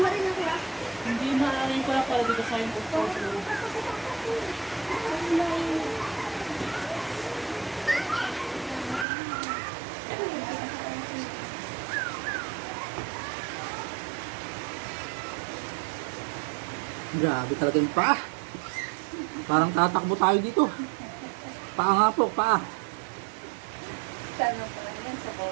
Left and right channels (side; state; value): left; drops out; at 9.1 s